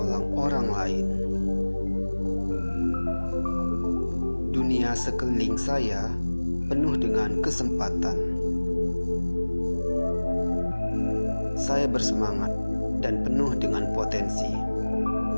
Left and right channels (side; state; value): both; inverted; correlation -1.00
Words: orang lain. Dunia sekeliling saya penuh dengan kesempatan. Saya bersemangat dan penuh dengan potensi.